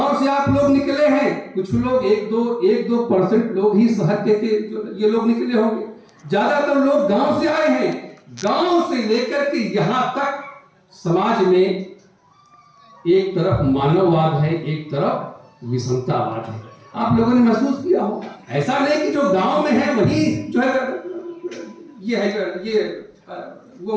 से आप लोग निकले हैं, कुछ लोग 1-2% लोग ही शहर के ये लोग निकले होंगे, ज्यादातर लोग गांव से आए हैं। गांव से लेकर के यहां तक समाज में एक तरफ मानववाद है, एक तरफ विषमतावाद है। आप लोगों ने महसूस किया होगा। ऐसा नहीं कि जो गांव में है वही जो है ये है, ये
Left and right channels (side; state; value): both; identical; correlation 1.00